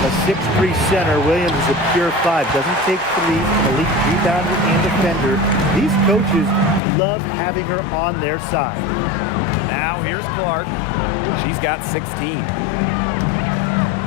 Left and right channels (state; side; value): drops out; right; at 6.8 s